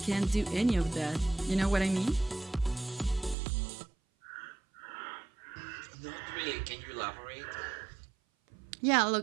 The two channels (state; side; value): drops out; left; at 3.4 s